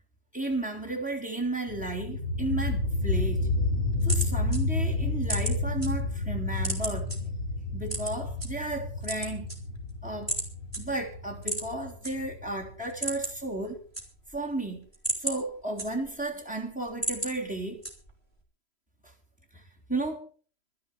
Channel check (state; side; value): late; right; 3.0 ms